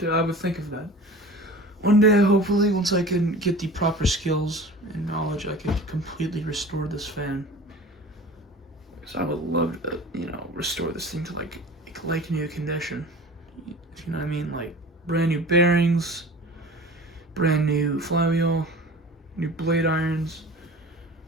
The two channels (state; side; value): normal; both; correlation 0.39